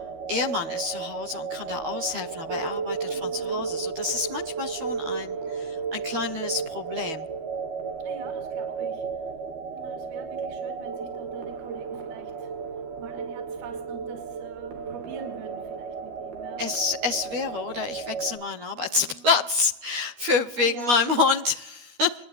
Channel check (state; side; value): late; left; 12 ms